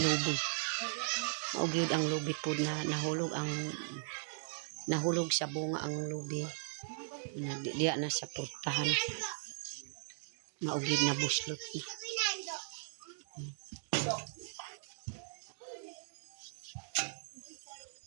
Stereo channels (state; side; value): silent; left; digital silence